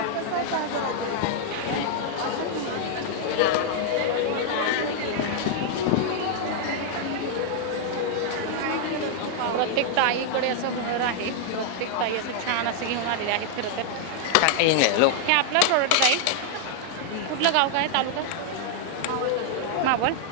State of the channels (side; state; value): both; different; correlation -0.01